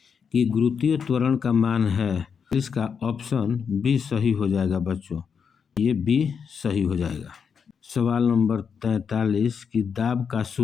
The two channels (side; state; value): right; quieter; 6.5 dB